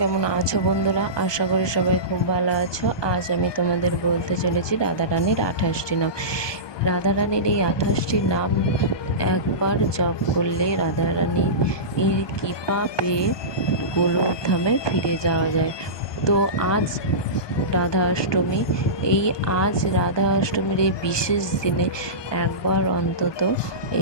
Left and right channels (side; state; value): right; late; 1.2 ms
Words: কেমন আছো বন্ধুরা? আশা করি সবাই খুব ভালো আছো। আজ আমি তোমাদের বলতে চলেছি রাধারানীর 28টি নাম। রাধারানীর এই 28টি নাম একবার জপ করলে রাধারানীর কৃপা পেয়ে গোলকধামে ফিরে যাওয়া যায়। তো আজ রাধা অষ্টমী, আজ রাধা অষ্টমীর এই বিশেষ দিনে একবার অন্তত